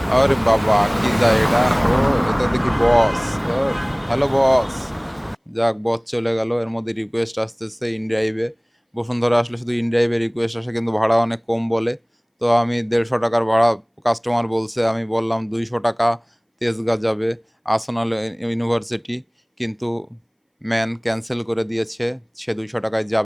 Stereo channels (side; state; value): both; identical; correlation 1.00